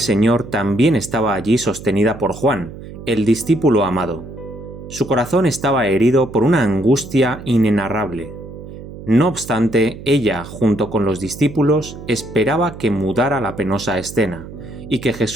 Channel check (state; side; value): noise; right; hum, 14 dB below the sound